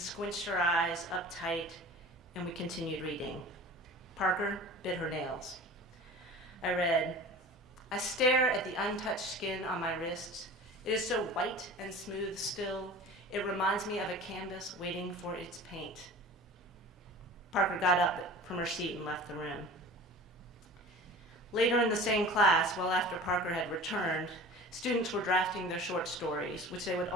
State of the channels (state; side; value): normal; both; correlation 0.39